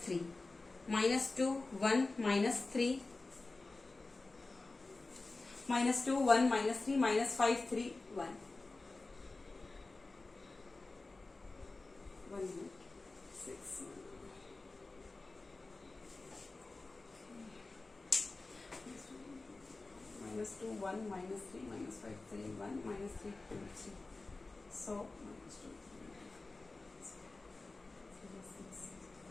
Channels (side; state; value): right; quieter; 3.4 dB